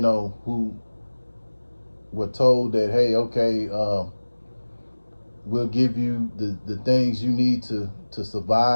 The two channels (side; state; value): both; inverted; correlation -1.00